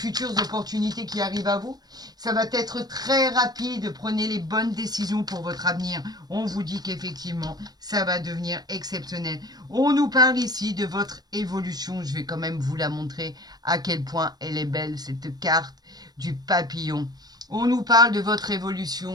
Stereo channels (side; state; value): left; late; 0.19 ms